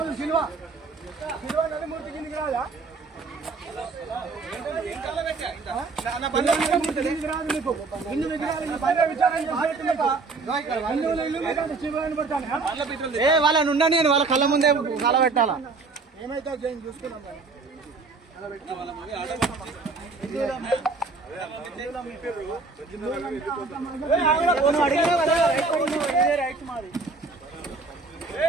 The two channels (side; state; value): left; quieter; 4.0 dB